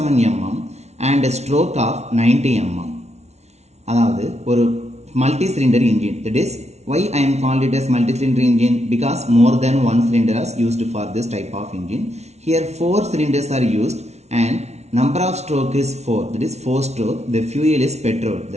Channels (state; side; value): late; left; 0.32 ms